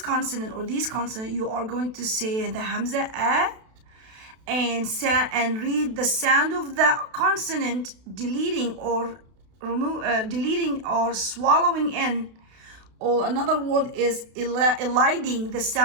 or these consonant, you are going to say the hamza a and read the sound of the consonant deleting or swallowing in, or another word is eliding the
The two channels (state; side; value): late; left; 32 ms